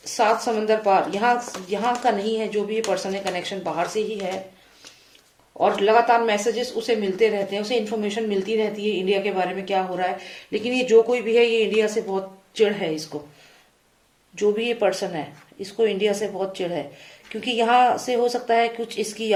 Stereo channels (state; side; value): identical; both; correlation 1.00